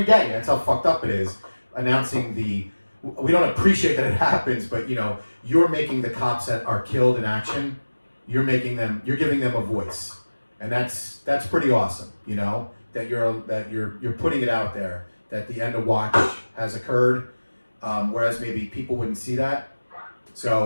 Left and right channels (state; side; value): inverted; both; correlation -1.00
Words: day. That's how fucked up it is. Announcing we don't appreciate that it happens, but you're making the cops that are killed in action. You're giving them a voice, and that's pretty awesome. That you're putting it out there that the end of watch has occurred. Whereas maybe people wouldn't see that.